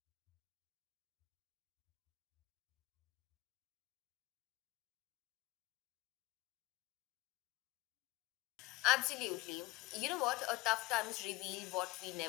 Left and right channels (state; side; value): quieter; right; 20.1 dB